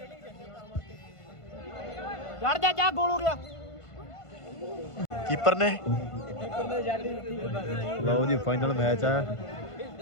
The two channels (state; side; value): late; right; 1.5 ms